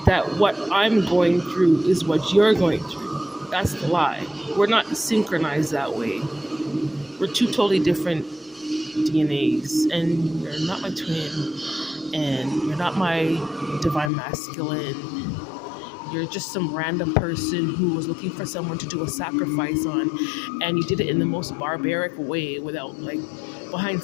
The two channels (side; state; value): right; drops out; at 14.1 s